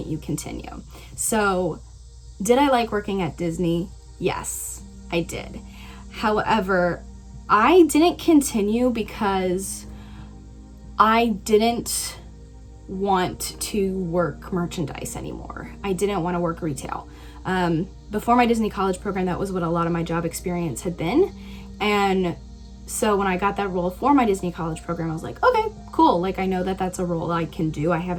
you continue? So did I like working at Disney? Yes, I did. However, I didn't continue because I didn't want to work merchandise anymore. I didn't want to work retail. Before my Disney college program, that was what a lot of my job experience had been. And so when I got that role for my Disney college program, I was like, okay, cool. Like, I know that that's a role I can do. I have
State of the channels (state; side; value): identical; both; correlation 1.00